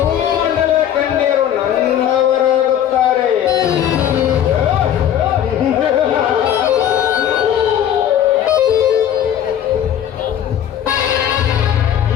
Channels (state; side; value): quieter; right; 10.2 dB